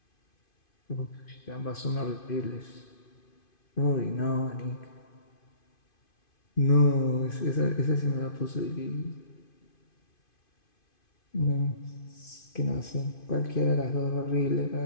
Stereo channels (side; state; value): right; late; 2.5 ms